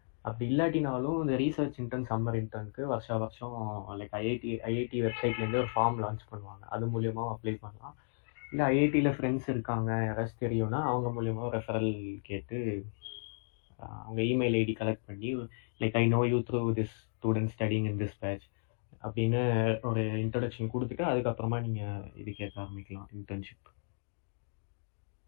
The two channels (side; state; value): right; silent; digital silence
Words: அப்படி இல்லாட்டினாலும் இந்த ரீசர்ச் இன்டர்ன் சம்மர் இன்டர்னுக்கு வருஷம் லைக் ஐஐடி வெப்சைட்லேருந்து ஒரு ஃபார்ம் லான்ச் பண்ணுவாங்க. அது மூலியமாக அப்ளை பண்ணலாம். இல்லை ஐஐடியில் ஃப்ரெண்ட்ஸ் இருக்காங்க யாராச்சும் தெரியும்னா அவங்க மூலியமாக ரெஃபரல் கேட்டு அவங்க இமெயில் ஐடி கலெக்ட் பண்ணி like I know you through this student studying in this batch, அப்படின்னு ஒரு இன்ட்ரடக்ஷன் கொடுத்துட்டு அதுக்கப்புறமா நீங்கள் இது கேட்க ஆரம்பிக்கலாம் இன்டர்ன்ஷிப்.